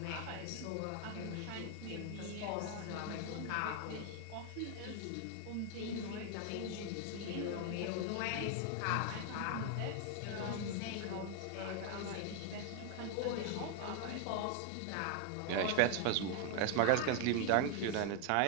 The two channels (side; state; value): both; different; correlation 0.00